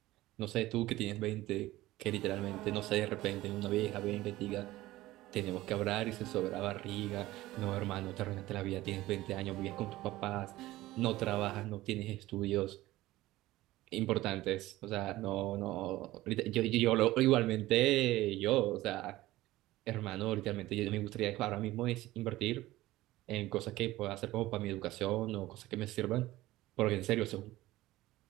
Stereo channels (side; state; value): left; quieter; 17.1 dB